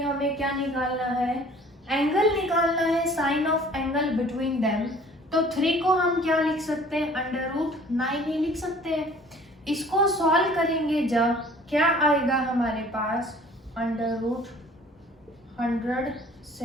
क्या निकालना है, एंगल निकालना है, sine of angle between them. तो 3 को हम क्या लिख सकते हैं √9 ही लिख सकते हैं। इसको सॉल्व करेंगे जब क्या आएगा हमारे पास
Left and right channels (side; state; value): both; normal; correlation 0.51